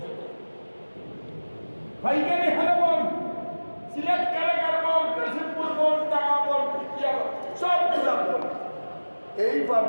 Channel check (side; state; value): both; inverted; correlation -1.00